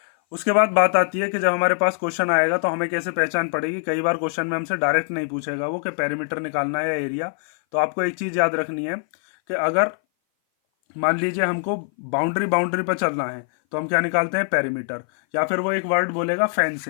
उसके बाद बात आती है कि जब हमारे पास क्वेश्चन आएगा तो हमें कैसे पहचान पड़ेगी। कई बार क्वेश्चन में हमसे डायरेक्ट नहीं पूछेगा वो कि पेरीमीटर निकालना है या एरिया। तो आपको एक चीज याद रखनी है कि अगर मान लीजिए हमको बाउंड्री पर चलना है तो हम क्या निकालते हैं, पेरीमीटर। या फिर वो एक वर्ड बोलेगा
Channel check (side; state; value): right; silent; 59 dB below the other